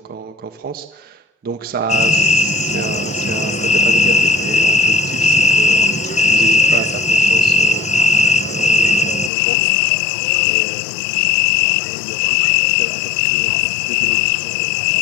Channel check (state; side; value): drops out; right; at 9.3 s